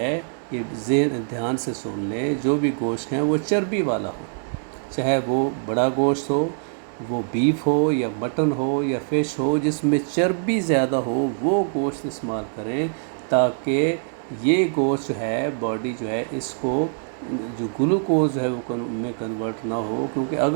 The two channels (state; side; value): silent; left; digital silence